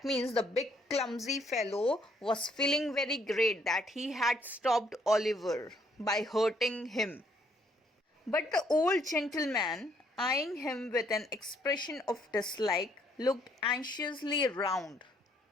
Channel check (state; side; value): normal; both; correlation 0.68